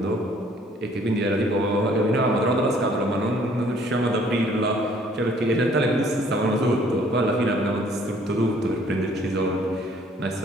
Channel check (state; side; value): normal; both; correlation 0.60